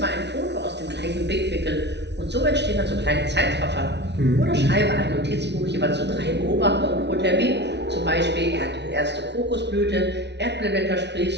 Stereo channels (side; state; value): left; late; 0.50 ms